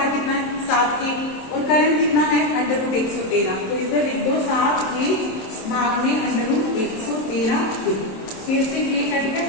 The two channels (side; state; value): right; late; 27 ms